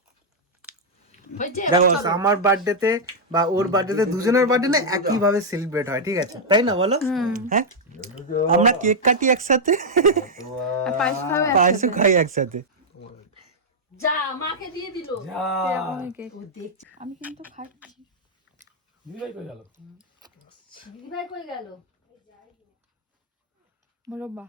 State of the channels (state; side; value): normal; both; correlation -0.04